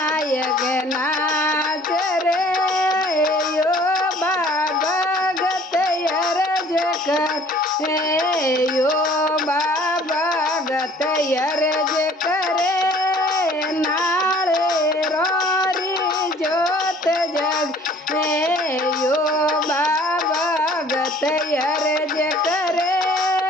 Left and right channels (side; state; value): both; normal; correlation 0.53